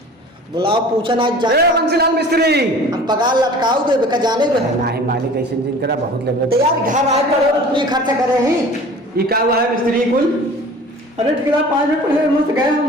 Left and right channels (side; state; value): both; normal; correlation 0.44